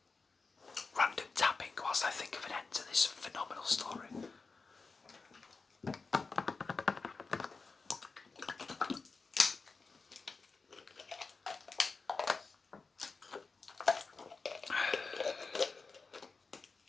Random tapping whilst I think of an end to this phenomenal story.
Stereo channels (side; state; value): right; quieter; 4.3 dB